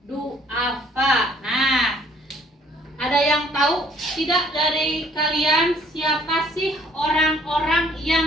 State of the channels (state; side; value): normal; both; correlation 0.60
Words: duafa. Nah, ada yang tahu tidak dari kalian siapa sih orang-orang